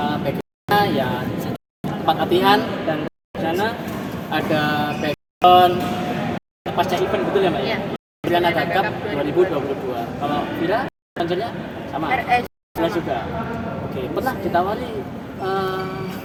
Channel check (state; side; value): identical; both; correlation 1.00